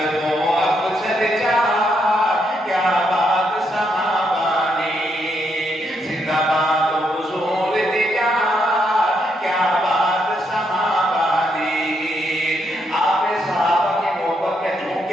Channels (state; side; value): normal; both; correlation 0.77